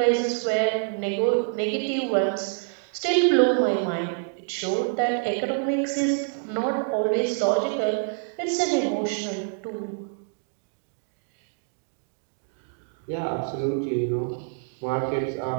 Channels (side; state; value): left; silent; digital silence